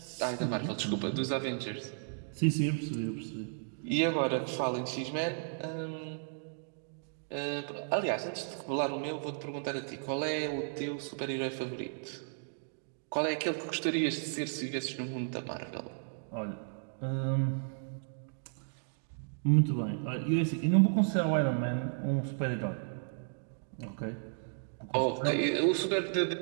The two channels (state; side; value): silent; left; digital silence